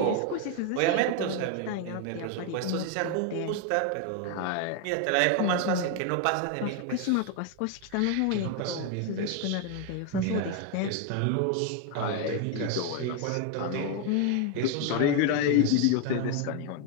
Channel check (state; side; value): different; both; correlation 0.01